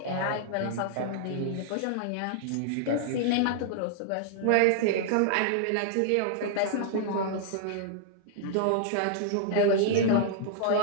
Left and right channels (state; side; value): different; both; correlation -0.01